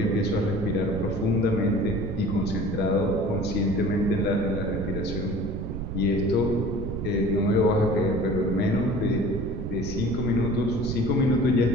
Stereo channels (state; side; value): noise; right; rumble, 5 dB below the sound